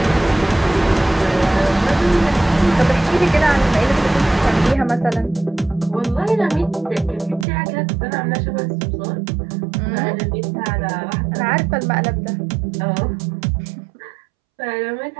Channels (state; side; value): drops out; left; at 7.5 s